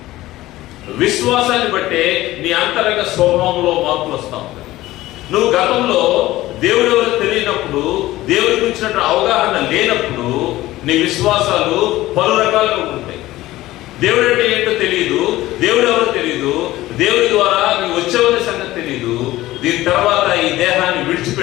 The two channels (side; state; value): right; quieter; 16.7 dB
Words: విశ్వాసాన్ని బట్టే నీ అంతరంగ స్వభావంలో మార్పులు వస్తా ఉంటాయి. నువ్వు గతంలో దేవుడు ఎవరో తెలియనప్పుడు, దేవుడి గురించిన అవగాహన లేనప్పుడు నీ విశ్వాసాలు పలు రకాలుగా ఉంటాయి. దేవుడు అంటే ఏంటో తెలియదు, దేవుడు ఎవరో తెలియదు, దేవుడి ద్వారా నీవు వచ్చేవనే సంగతి తెలియదు. దీని తర్వాత ఈ దేహాన్ని